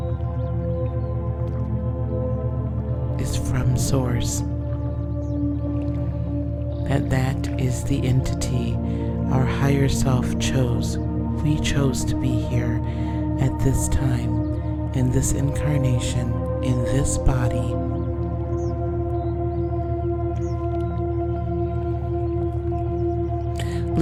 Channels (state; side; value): identical; both; correlation 1.00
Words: Is from Source. That is the entity our higher self chose. We chose to be here at this time in this incarnation, in this body,